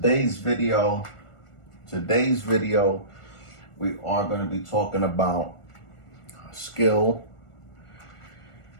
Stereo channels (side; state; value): right; late; 1.4 ms